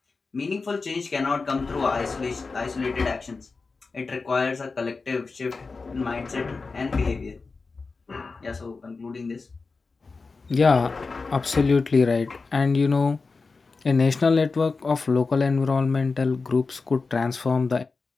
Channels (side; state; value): right; quieter; 4.2 dB